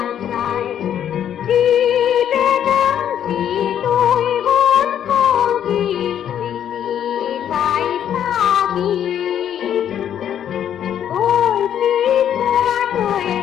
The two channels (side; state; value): right; quieter; 9.8 dB